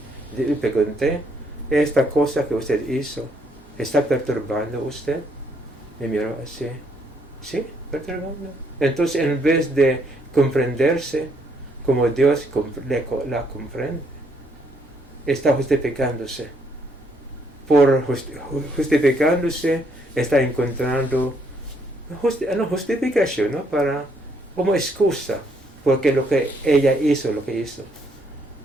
Le pregunté, ¿esta cosa que usted hizo está perturbando a usted? Y miró así, sí, perturbando. Entonces, en vez de comprenderse como Dios la comprende, está justificándose. Por justificándose, está encontrando justificación, ¿no?, como excusa, porque lo que ella hizo, lo que hizo.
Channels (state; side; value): normal; both; correlation 0.71